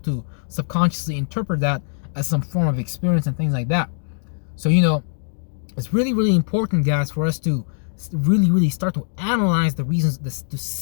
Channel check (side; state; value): right; silent; digital silence